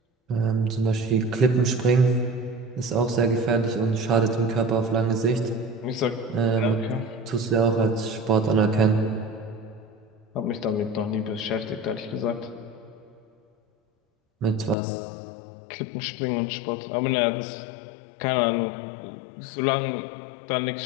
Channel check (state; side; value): drops out; right; at 14.8 s